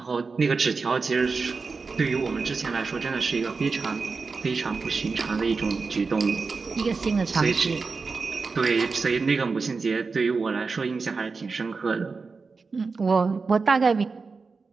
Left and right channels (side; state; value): left; quieter; 4.5 dB